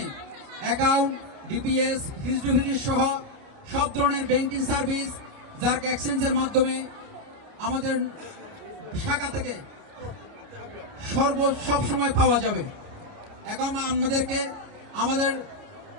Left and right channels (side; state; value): left; late; 29 ms